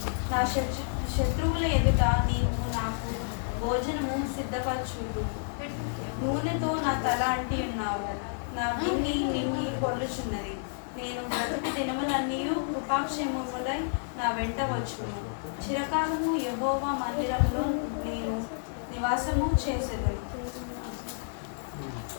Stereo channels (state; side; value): silent; right; 58 dB below the other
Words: నా శత్రువుల ఎదుట నీవు నాకు భోజనము సిద్ధపరచుదు. నూనెతో నా తల అంటి ఉన్నావు, నా బిన్ని నిన్ని పొర్లుచున్నది. నేను బ్రతుకు దినములన్నీ కృపాక్షేమములై నా వెంట వచ్చును. చిరకాలము యెహోవా మందిరంలో నేను నివాసము చేసేదను.